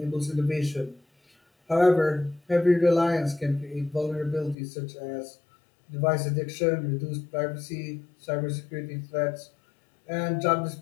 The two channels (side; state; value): right; drops out; at 4.5 s